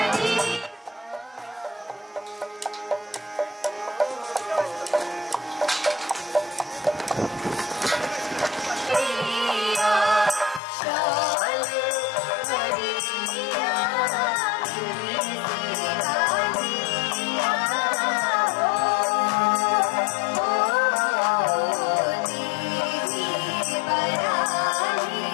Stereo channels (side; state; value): right; drops out; at 10.6 s